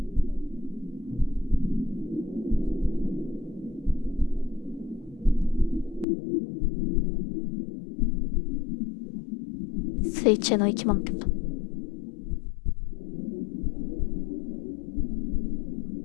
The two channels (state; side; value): drops out; right; at 6.1 s